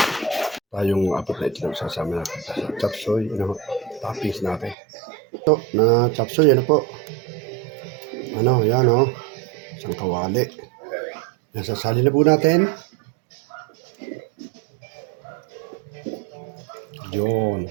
Tayong apat na itlog sasama natin sa chopsoy, toppings natin. Ito na chopsoy, ano po? Ano, yan o. Isang kawali. Yan, sasali na po natin. Yun,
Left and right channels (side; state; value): left; drops out; at 4.8 s